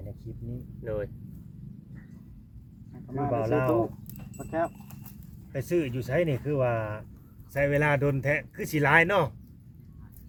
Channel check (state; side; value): identical; both; correlation 1.00